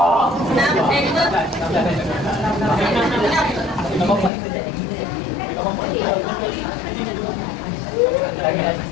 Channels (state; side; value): drops out; right; at 4.3 s